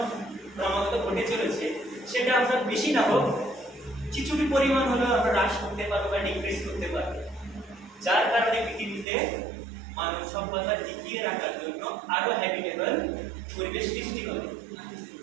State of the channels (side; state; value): left; drops out; at 9.1 s